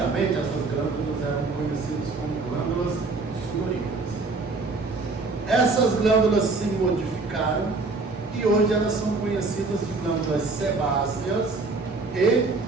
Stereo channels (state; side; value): quieter; left; 3.8 dB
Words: essas glândulas eram conhecidas como glândulas sudoríparas. Essas glândulas se modificaram e hoje elas são conhecidas de glândulas sebáceas e